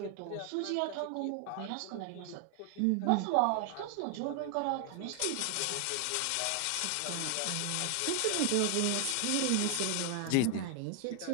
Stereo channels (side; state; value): both; different; correlation 0.00